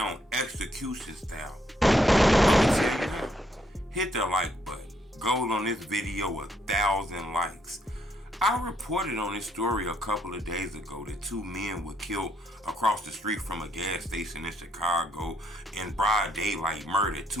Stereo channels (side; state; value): both; normal; correlation 0.73